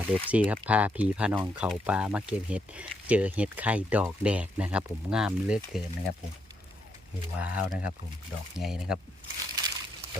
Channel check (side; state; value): both; normal; correlation 0.78